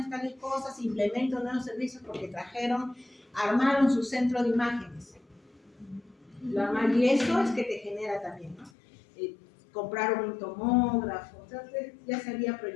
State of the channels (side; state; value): right; drops out; at 8.7 s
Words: tales cosas, implemento nuevos servicios porque armaron su centro de imágenes. Y eso es que te genera también, ¿no? Compraron un tomógrafo, entonces ya se había